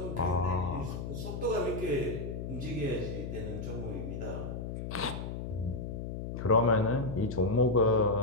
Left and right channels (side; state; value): left; noise; hum, 6 dB below the sound